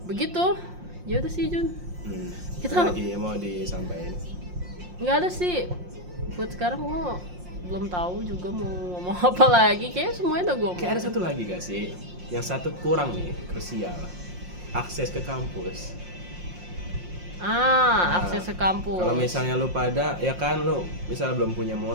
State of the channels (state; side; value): late; left; 5.6 ms